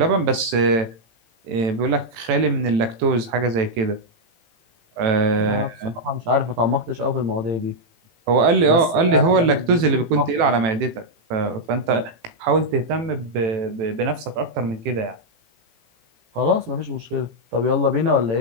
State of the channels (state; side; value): late; left; 18 ms